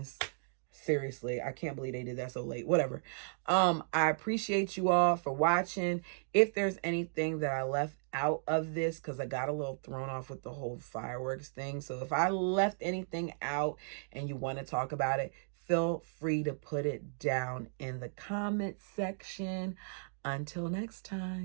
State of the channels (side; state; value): left; silent; digital silence